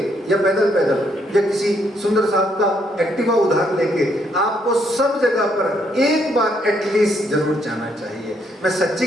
या पैदल या किसी सुंदर साहब का एक्टिवा उधार लेके आपको सब जगह पर एक बार एटलीस्ट जरूर जाना चाहिए। मैं सच्ची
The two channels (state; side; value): normal; both; correlation 0.72